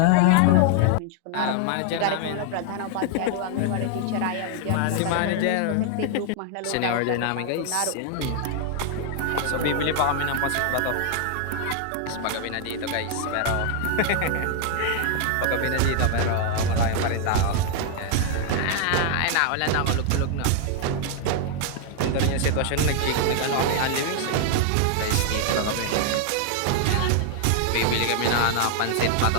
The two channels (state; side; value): different; both; correlation 0.00